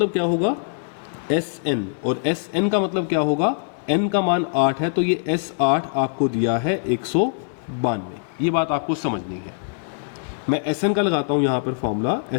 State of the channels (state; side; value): silent; right; 61 dB below the other